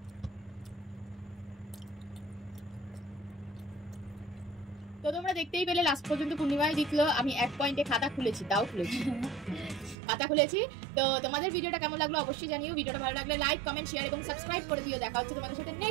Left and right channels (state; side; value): drops out; left; at 10.0 s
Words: তো তোমরা দেখতেই পেলে লাস্ট পর্যন্ত পূর্ণিমায় জিতলো, আমি 1 পয়েন্টে খাতা খুলেছি, তাও খুলেছি খাতা খুলেছি। তো তোমাদের ভিডিওটা কেমন লাগলো অবশ্যই জানিও, ভিডিওটা ভালো লাগলে লাইক, কমেন্ট, শেয়ার এবং সাবস্ক্রাইব করে দিও। দেখা হচ্ছে তোমাদের সাথে